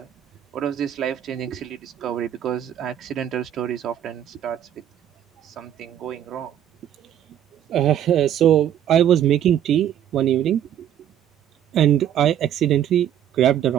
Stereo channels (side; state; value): left; quieter; 10.5 dB